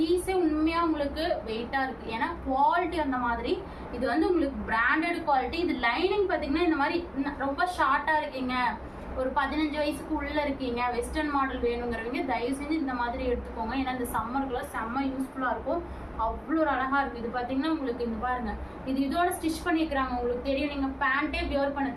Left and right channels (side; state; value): both; identical; correlation 1.00